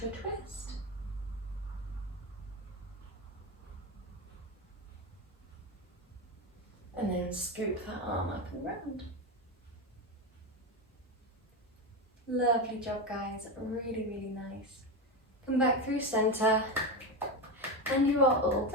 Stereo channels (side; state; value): both; normal; correlation 0.16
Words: a twist. And then scoop that arm up and round. Lovely job, guys. Really, really nice. Come back through center. And you are all